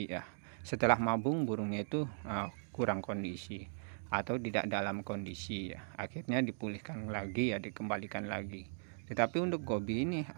ya. Setelah mabung burungnya itu kurang kondisi atau tidak dalam kondisi ya. Akhirnya dipulihkan lagi ya, dikembalikan lagi. Tetapi untuk Gobi ini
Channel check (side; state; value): left; silent; digital silence